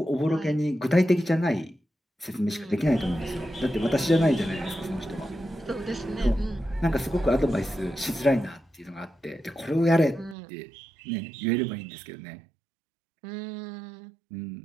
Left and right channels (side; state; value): left; drops out; at 10.4 s